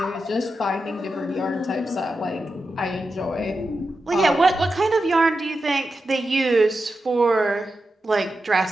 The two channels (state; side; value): normal; both; correlation 0.90